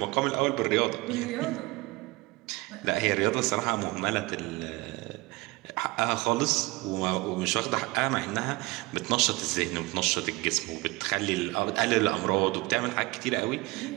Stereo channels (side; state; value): left; quieter; 22.8 dB